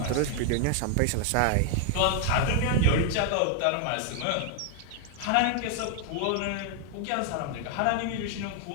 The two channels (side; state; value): both; different; correlation 0.00